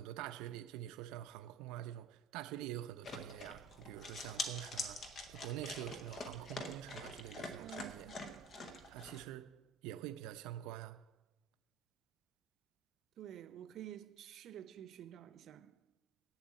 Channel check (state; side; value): quieter; left; 4.1 dB